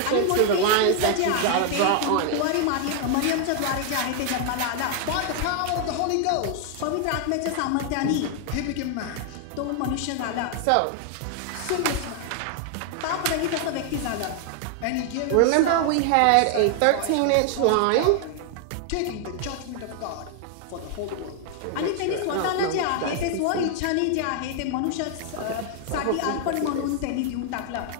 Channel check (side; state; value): both; different; correlation 0.00